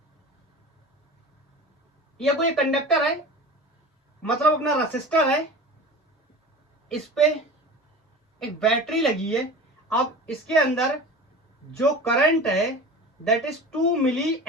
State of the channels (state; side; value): normal; both; correlation 0.35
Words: ये कोई कंडक्टर है, मतलब अपना रेसिस्टर है, इस पे एक बैटरी लगी है। अब इसके अंदर जो करंट है दैट इज 2 मिली